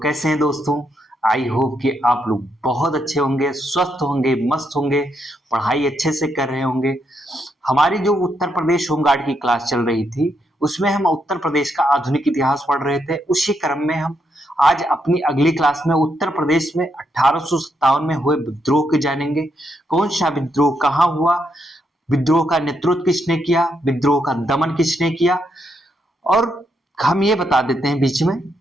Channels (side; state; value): both; normal; correlation 0.79